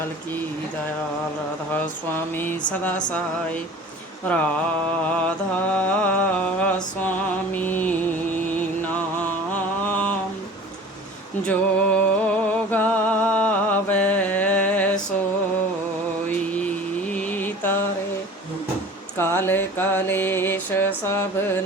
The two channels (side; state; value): both; normal; correlation 0.42